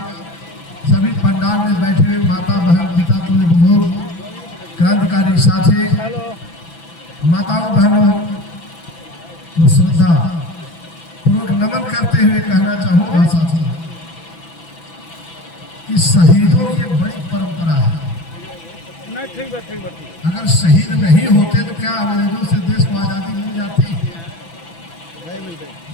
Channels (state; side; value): late; right; 6.0 ms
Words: सभी पंडाल में बैठे हुए माता बहन पिता तुल्य बुजुर्ग क्रांतिकारी साथी माताओं बहनों को श्रद्धा पूर्वक नमन करते हुए कहना चाहूँगा साथियों कि शहीदों की एक बड़ी परंपरा है। अगर शहीद नहीं होते तो क्या अंग्रेजों से देश को आज़ादी मिल जाती?